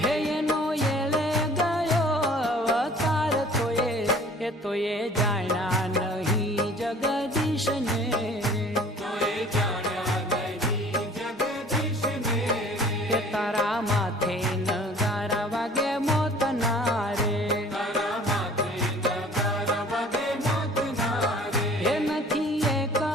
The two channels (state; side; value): normal; both; correlation 0.50